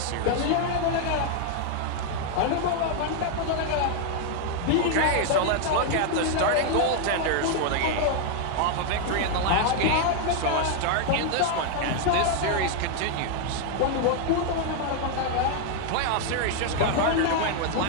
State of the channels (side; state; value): both; different; correlation 0.00